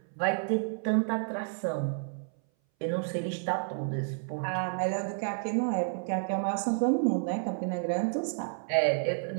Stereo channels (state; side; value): silent; left; 57 dB below the other